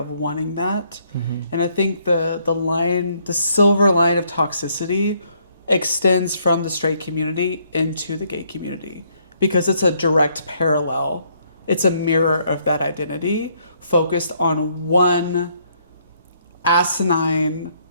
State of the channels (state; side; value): inverted; both; correlation -0.68